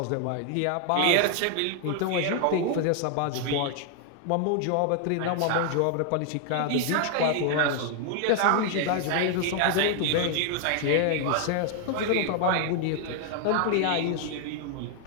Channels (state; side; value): different; both; correlation 0.00